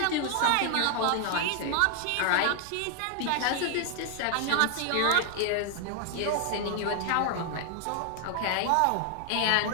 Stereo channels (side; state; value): both; different; correlation 0.00